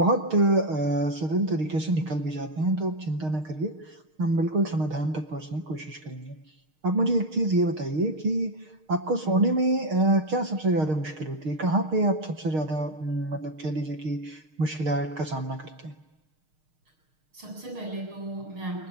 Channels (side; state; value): left; late; 6.5 ms